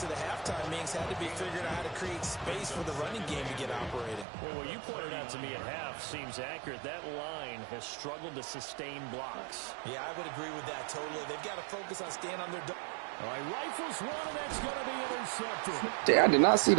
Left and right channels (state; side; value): drops out; left; at 4.2 s